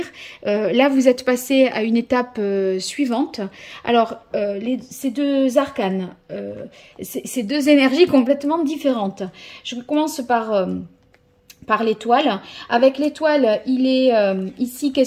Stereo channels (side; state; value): both; identical; correlation 1.00